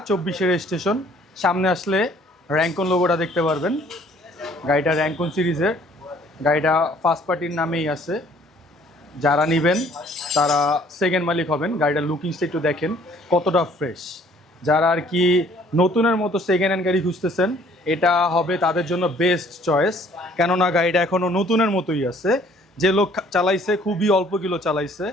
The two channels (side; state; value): both; normal; correlation 0.58